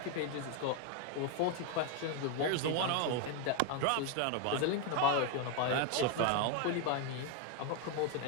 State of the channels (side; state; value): both; different; correlation 0.01